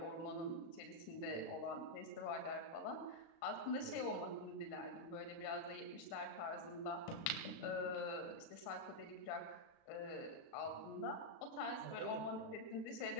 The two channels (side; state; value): right; late; 36 ms